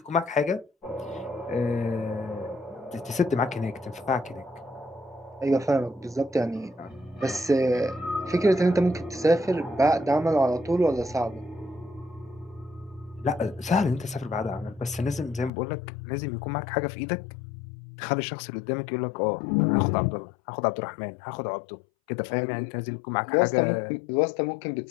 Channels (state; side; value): drops out; right; at 15.5 s